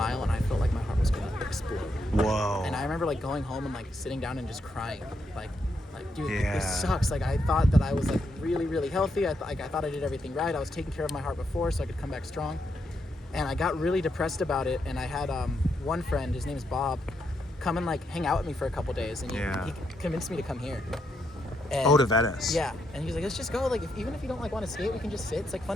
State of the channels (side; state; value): both; normal; correlation 0.79